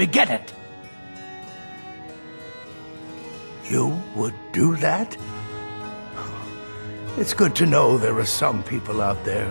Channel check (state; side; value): inverted; both; correlation -1.00